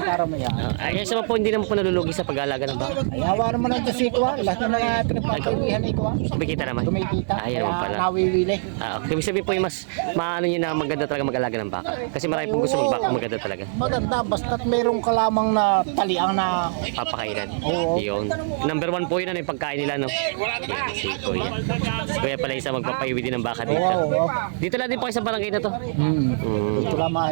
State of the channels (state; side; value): silent; left; 60 dB below the other